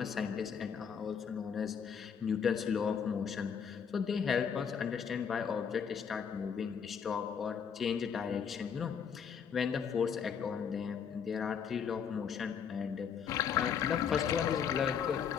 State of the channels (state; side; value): quieter; right; 7.1 dB